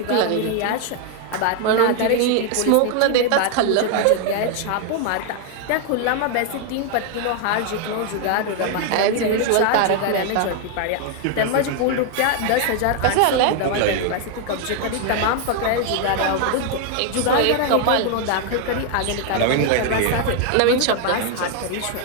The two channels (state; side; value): different; both; correlation 0.00